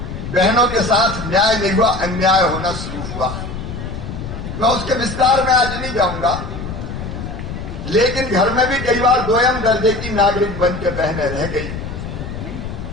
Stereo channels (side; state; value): left; noise; rumble, 8 dB below the sound